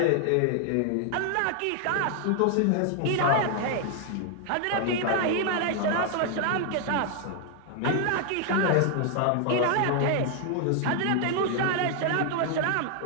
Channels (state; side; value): different; both; correlation 0.00